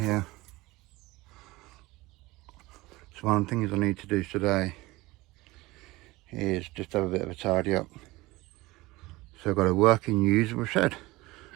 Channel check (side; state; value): left; quieter; 20.5 dB